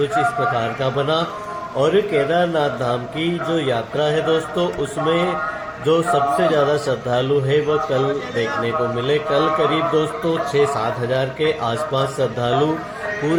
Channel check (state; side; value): identical; both; correlation 1.00